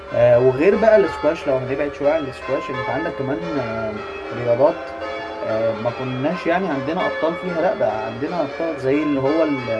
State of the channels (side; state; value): both; identical; correlation 1.00